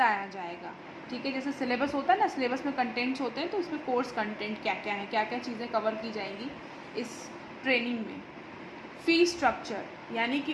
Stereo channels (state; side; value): identical; both; correlation 1.00